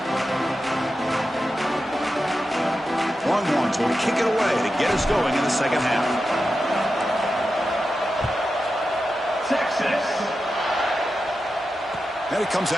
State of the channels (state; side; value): normal; both; correlation 0.90